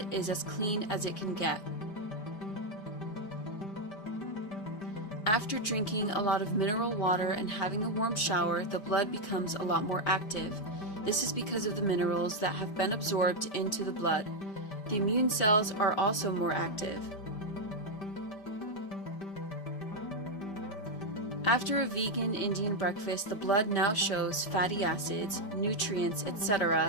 is as clean as it can get. After drinking a lot of mineral water and having a warm shower, the blood becomes a lot more active. This is because of the minerals that have been absorbed into the blood. The immune cells are also more active. After a vegan Indian breakfast, the blood now shows fatty acids, nutrients,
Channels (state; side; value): late; right; 5.1 ms